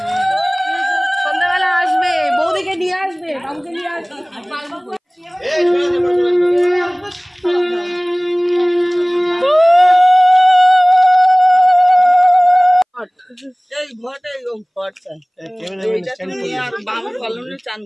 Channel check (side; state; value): both; identical; correlation 1.00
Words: সন্ধ্যাবেলা আসবে, বৌদিকে নিয়ে আসবে, বাবুকে নিয়ে আসবে। এই ঘরটা এরকম ঘরটা চান